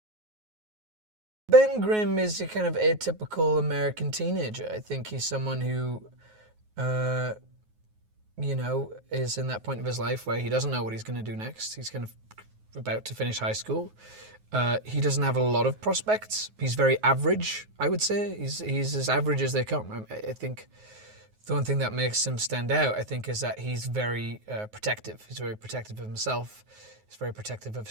Ben Grimm is a kind of atypical American teenager. I think he's someone who, you know, is in that point of his life where he doesn't know what he's going to do next. He's kind of about to finish high school. He doesn't have a lot of prospects. He's very average, I would say. He's as average as they come. I think the one thing that makes him stand out, I think, is that he's very protective. He's very protective of himself. He's very protective of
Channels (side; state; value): left; late; 9.4 ms